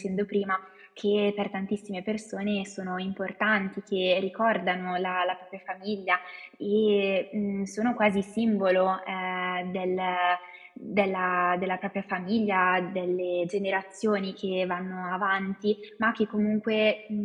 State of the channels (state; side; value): identical; both; correlation 1.00